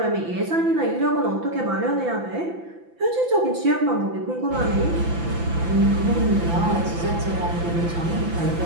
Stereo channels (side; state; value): left; late; 5.9 ms